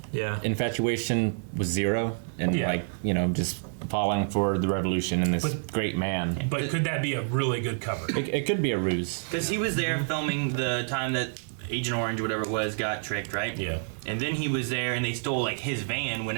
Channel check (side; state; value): left; silent; 59 dB below the other